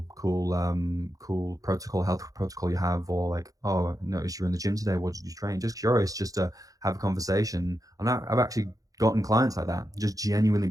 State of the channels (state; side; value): late; left; 0.17 ms